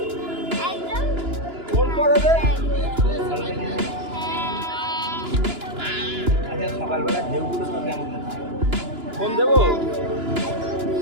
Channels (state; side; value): late; left; 2.9 ms